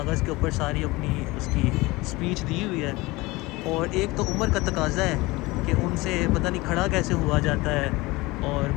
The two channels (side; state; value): right; quieter; 21.8 dB